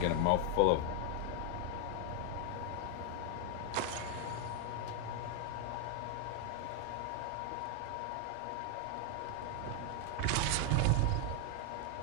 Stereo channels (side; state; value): both; different; correlation 0.00